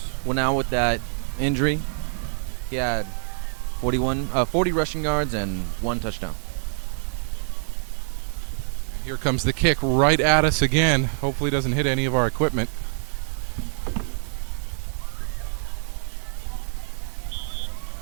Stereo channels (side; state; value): left; silent; digital silence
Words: went out with that injury, he had 40 rushing yards and 1 touchdown. And here comes the kick right at us again. Hopefully it doesn't hit any of our equipment.